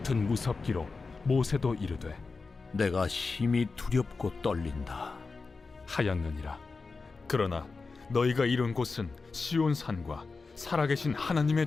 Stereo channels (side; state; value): right; quieter; 4.3 dB